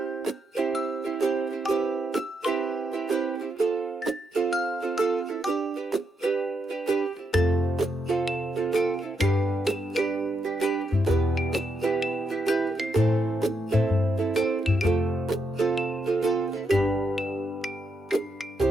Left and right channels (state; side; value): normal; both; correlation 0.81